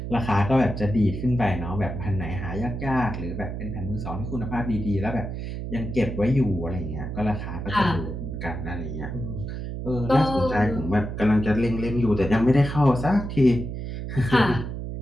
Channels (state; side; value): noise; right; hum, 6 dB below the sound